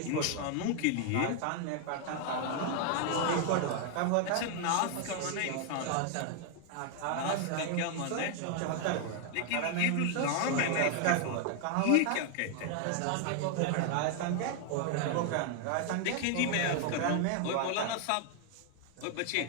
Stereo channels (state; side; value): different; both; correlation 0.00